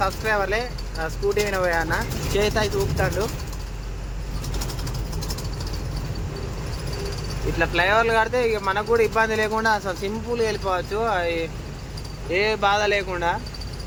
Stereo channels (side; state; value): both; identical; correlation 1.00